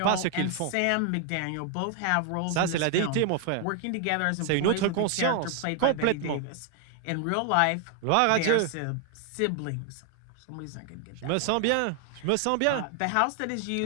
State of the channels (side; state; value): both; different; correlation 0.00